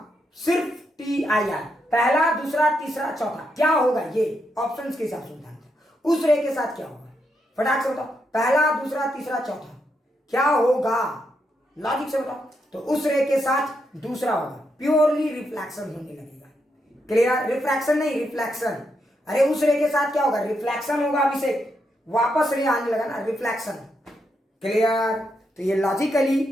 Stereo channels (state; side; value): normal; both; correlation 0.81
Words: सिर्फ TIR, पहला, दूसरा, तीसरा, चौथा, क्या होगा? ये ऑप्शंस के हिसाब से बताना। उस रे के साथ क्या होगा? फटाक से बताओ, पहला, दूसरा, तीसरा, चौथा, क्या होगा? लॉजिक से बताओ। तो उस रे के साथ दूसरा होगा, प्योरली रिफ्लेक्शन होने लगेगा। क्लियर? रिफ्रैक्शन नहीं, रिफ्लेक्शन। अरे उस रे के साथ क्या होगा? रिफ्लेक्शन होगा। अभिषेक वापस रे आने लगा ना, रिफ्लेक्शन। क्लियर? तो ये